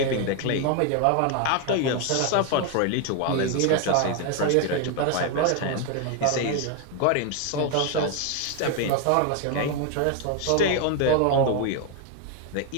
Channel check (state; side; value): different; both; correlation 0.01